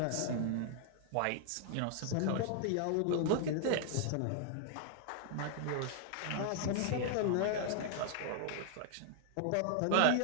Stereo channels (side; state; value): both; different; correlation 0.00